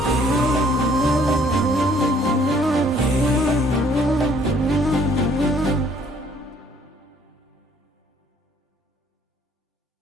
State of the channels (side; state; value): both; normal; correlation 0.61